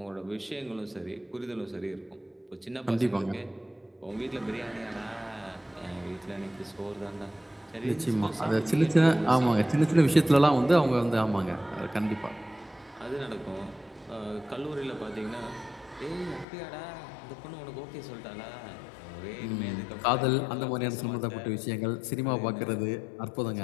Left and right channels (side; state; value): right; drops out; at 16.4 s